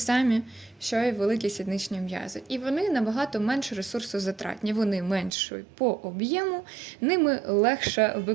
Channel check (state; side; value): drops out; left; at 5.3 s